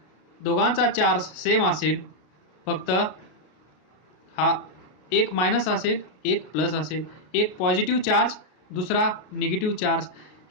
दोघांचा चार्ज सेम असेल, फक्त हा एक मायनस असेल, एक प्लस असेल, एक पॉझिटिव्ह चार्ज, दुसरा निगेटिव्ह चार्ज.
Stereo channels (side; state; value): right; late; 33 ms